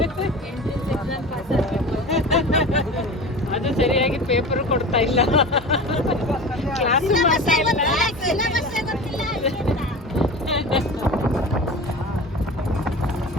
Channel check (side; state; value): both; normal; correlation 0.33